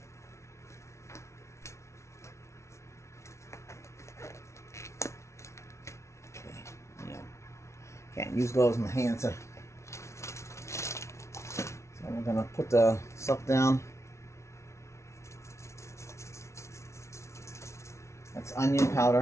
Can't use gloves in my hands. So we're gonna put the stuff down. That's onion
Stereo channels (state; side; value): late; right; 0.13 ms